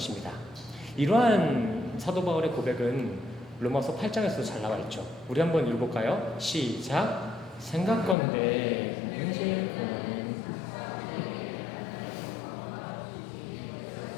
이러한 사도 바울의 고백은 로마서 8장에서도 잘 나와 있죠. 우리 한번 읽어볼까요? 시작. 생각건대 현재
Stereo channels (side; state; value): right; drops out; at 8.2 s